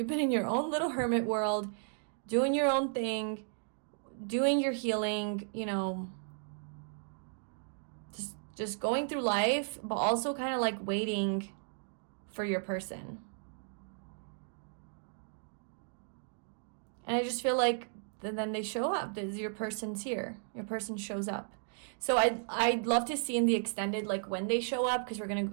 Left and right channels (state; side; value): silent; left; digital silence